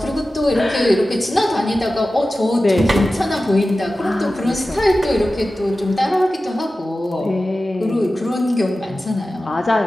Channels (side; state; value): both; normal; correlation 0.95